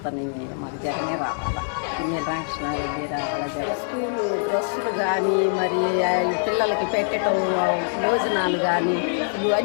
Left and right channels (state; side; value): silent; right; digital silence